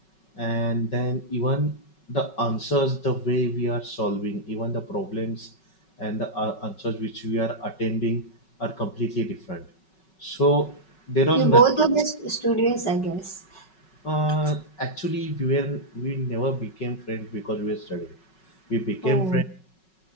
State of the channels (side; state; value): right; late; 5.4 ms